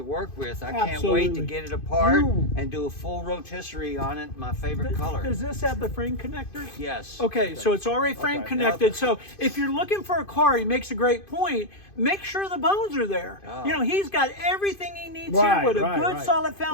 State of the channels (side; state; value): right; late; 2.5 ms